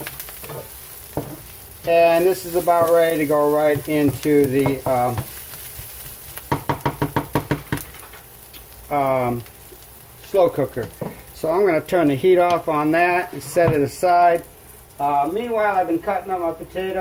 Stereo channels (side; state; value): both; identical; correlation 1.00